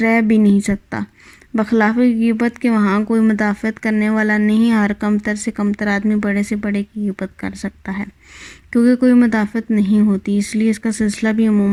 رہ بھی نہیں سکتا، بخلاف غیبت کے وہاں کوئی مدافعت کرنے والا نہیں، ہر کمتر سے کمتر آدمی بڑے سے بڑے کی غیبت کر سکتا ہے، کیونکہ کوئی مدافعت نہیں ہوتی، اس لیے اس کا سلسلہ بھی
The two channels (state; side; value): identical; both; correlation 1.00